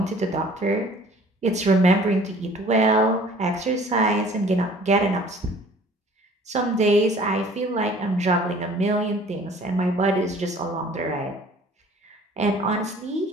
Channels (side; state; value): both; normal; correlation 0.51